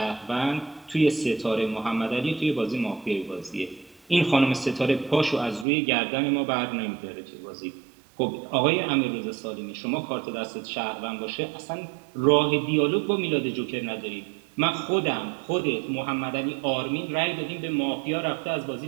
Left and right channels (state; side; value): drops out; left; at 5.7 s